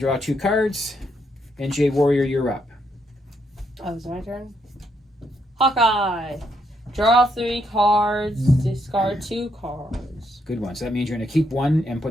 draw 2 cards. And JWarrior, you're up. Oh, it's my turn? Hawkeye. Draw 3 cards, discard 2 cards. Good one. So that means you're going to keep 1 and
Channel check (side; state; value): both; normal; correlation 0.76